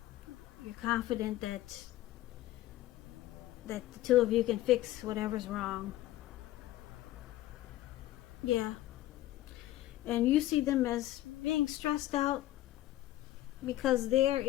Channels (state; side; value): quieter; right; 15.2 dB